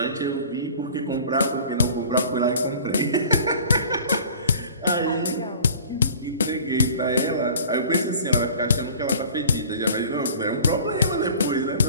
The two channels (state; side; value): inverted; both; correlation -0.46